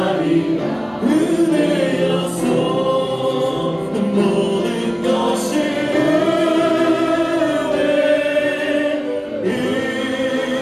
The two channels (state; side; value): identical; both; correlation 1.00